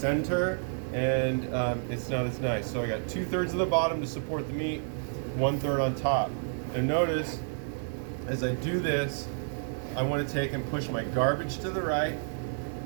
and it's not as nice. So I got 2/3 of the bottom to support the meat, 1/3 on top. And notice, as I do this, I want to take and push my garbage to the right,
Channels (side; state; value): left; silent; digital silence